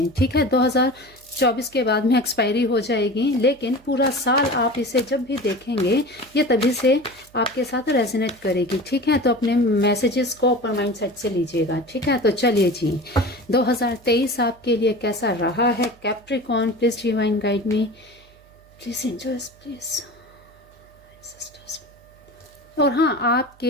ठीक है, 2024 के बाद में एक्सपायरी हो जाएगी, लेकिन पूरा साल आप इसे जब भी देखेंगे ये तभी से आपके साथ रेजोनेट करेगी। ठीक है, तो अपने मैसेजेस को ओपन माइंड सेट से लीजिएगा। ठीक है, तो चलिए जी, 2023 आपके लिए कैसा रहा है Capricorn. Please divine guide me, please angels, please. और हाँ, आपके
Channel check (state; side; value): noise; right; hum, 28 dB below the sound